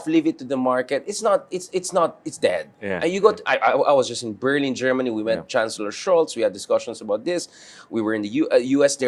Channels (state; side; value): identical; both; correlation 1.00